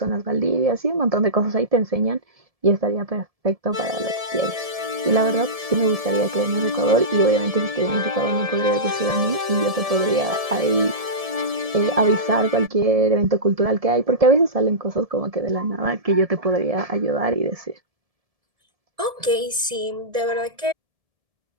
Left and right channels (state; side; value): late; left; 1.7 ms